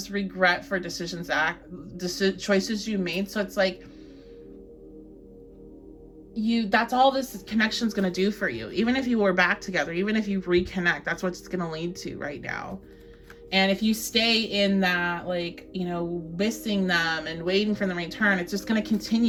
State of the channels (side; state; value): both; identical; correlation 1.00